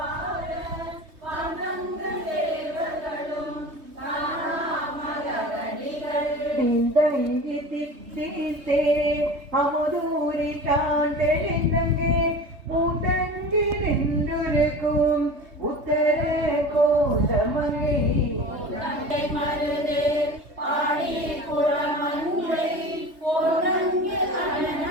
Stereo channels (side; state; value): left; late; 3.2 ms